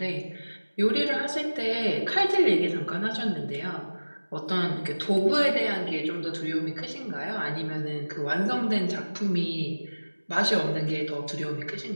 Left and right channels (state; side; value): inverted; both; correlation -1.00